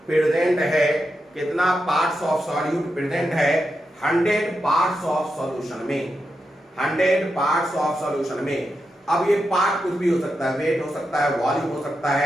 प्रेजेंट है, कितना पार्ट्स ऑफ सॉल्यूट प्रेजेंट है 100 पार्ट्स ऑफ सॉल्यूशन में, 100 पार्ट्स ऑफ सॉल्यूशन में। अब ये पार्ट कुछ भी हो सकता है, वेट हो सकता है, वॉल्यूम हो सकता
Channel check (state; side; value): normal; both; correlation 0.87